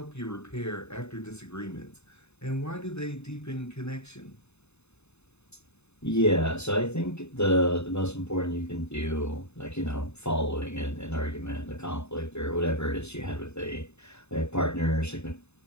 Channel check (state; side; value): late; right; 0.81 ms